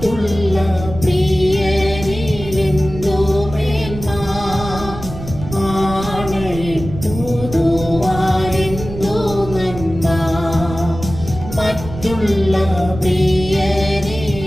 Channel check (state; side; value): noise; right; rumble, 10 dB below the sound